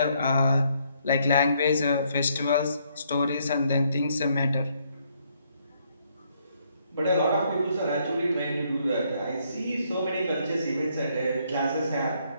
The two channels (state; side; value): inverted; both; correlation -0.71